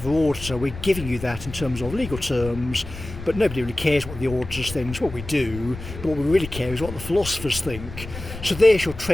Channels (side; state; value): left; noise; rumble, 11 dB below the sound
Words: auditor, we're giving you that in terms of legal terms, but nobody really cares what the auditors think. It's what we do, but what we really care is what the philosophers think. So there's your